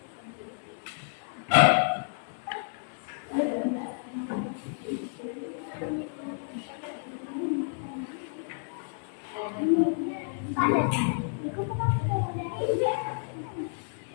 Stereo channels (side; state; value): right; silent; digital silence